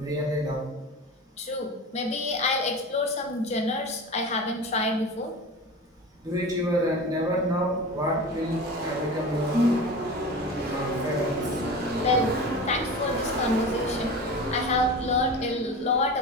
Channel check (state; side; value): normal; both; correlation 0.31